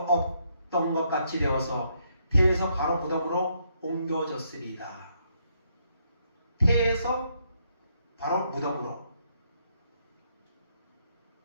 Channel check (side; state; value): both; inverted; correlation -0.74